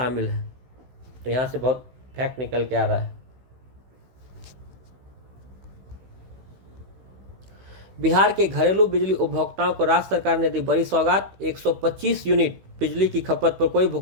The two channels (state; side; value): late; left; 16 ms